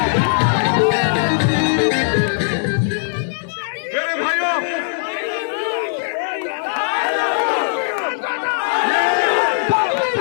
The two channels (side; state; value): right; silent; digital silence